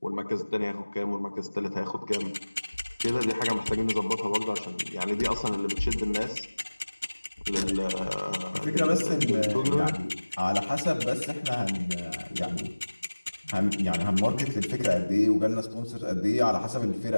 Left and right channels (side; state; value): both; inverted; correlation -1.00